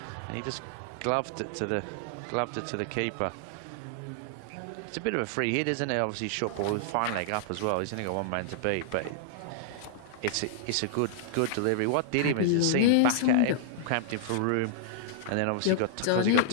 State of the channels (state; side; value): different; both; correlation -0.01